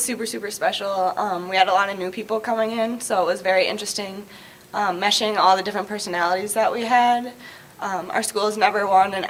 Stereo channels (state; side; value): identical; both; correlation 1.00